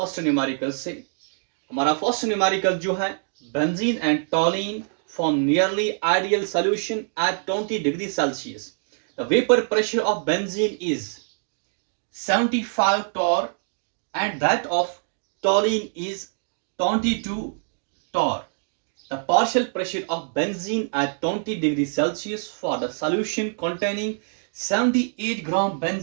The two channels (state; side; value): silent; left; digital silence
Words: न्यूमेरिकल से। हमारा फर्स्ट न्यूमेरिकल जो है, benzene and toluene form nearly ideal solution at 20 degree Celsius. The vapour pressure of benzene is 75 torr and that of toluene is 22 torr. The partial pressure of benzene at 20 degrees Celsius for the solution containing 78 gram